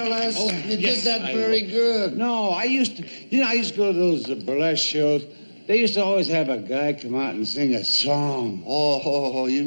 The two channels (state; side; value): inverted; both; correlation -1.00